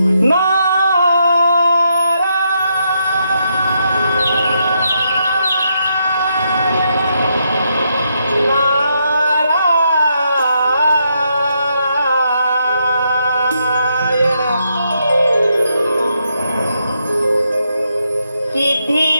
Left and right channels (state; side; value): inverted; both; correlation -0.79